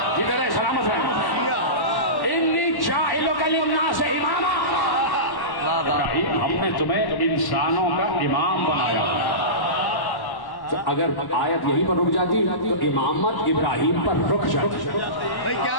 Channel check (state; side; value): late; right; 1.1 ms